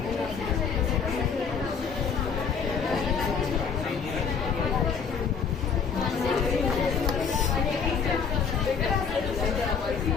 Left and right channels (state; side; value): quieter; right; 6.2 dB